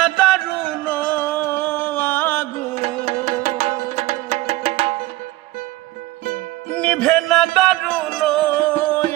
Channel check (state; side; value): quieter; left; 18.7 dB